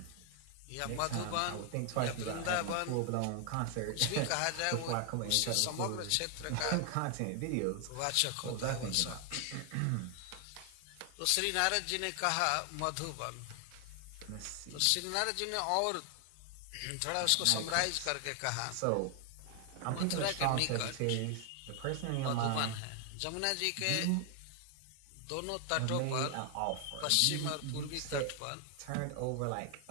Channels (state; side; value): different; both; correlation 0.00